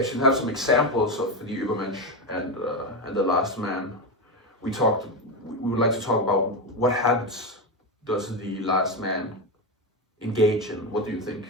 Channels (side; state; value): both; normal; correlation 0.13